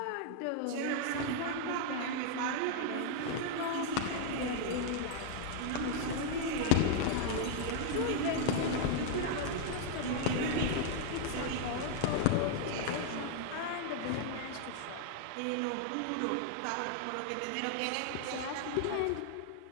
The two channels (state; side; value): different; both; correlation 0.00